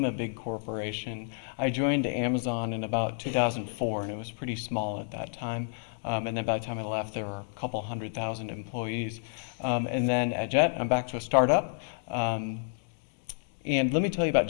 a big corporation. I joined Amazon in about 2004, and it was pretty small at that time. And then by the time I left, there were a couple 100,000 employees. And then at Jet, I'm back to a startup. And let me tell you about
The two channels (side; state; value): right; silent; digital silence